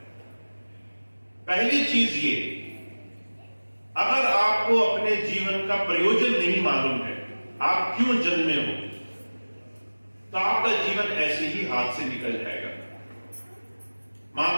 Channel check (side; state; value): both; inverted; correlation -1.00